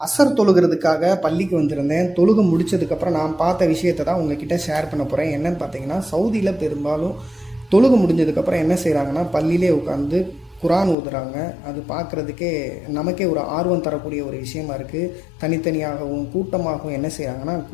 அசர் தொழுகிறதுக்காக பள்ளிக்கு வந்திருந்தேன். தொழுகை முடிச்சதுக்கப்புறம் நான் பார்த்த விஷயத்தை தான் உங்ககிட்ட ஷேர் பண்ண போகிறேன். என்னன்னு பார்த்தீங்கன்னா, சவுதியில் பெரும்பாலும் தொழுகை முடிஞ்சதுக்கப்புறம் என்ன செய்கிறாங்கன்னா, பள்ளியிலே உட்காந்து குரான் ஓதுறாங்க. அது பார்க்குறதுக்கே நமக்கே ஒரு ஆர்வம் தரக்கூடிய ஒரு விஷயமா இருக்குது. தனித்தனியாகவும் கூட்டமாகவும் என்ன செய்கிறாங்கன்னா,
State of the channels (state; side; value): drops out; right; at 11.0 s